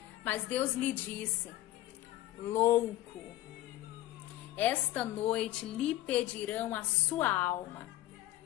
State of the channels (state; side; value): quieter; right; 15.2 dB